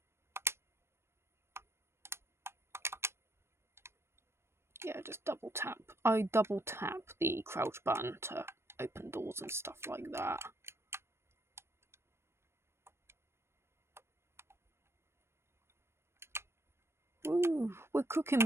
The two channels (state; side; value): late; left; 0.12 ms